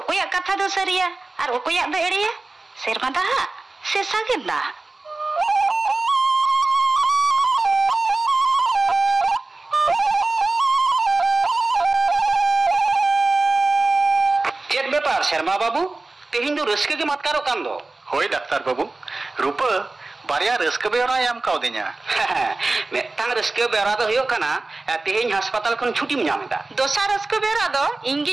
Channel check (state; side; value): quieter; left; 3.3 dB